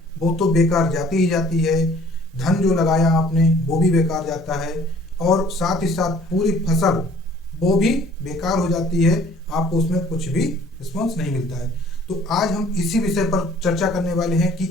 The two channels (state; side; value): normal; both; correlation 0.54